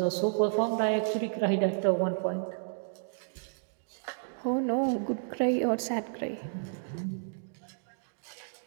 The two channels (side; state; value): left; silent; digital silence